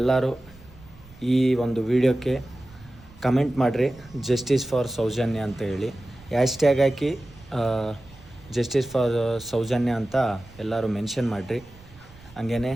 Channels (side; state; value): right; noise; rumble, 23 dB below the sound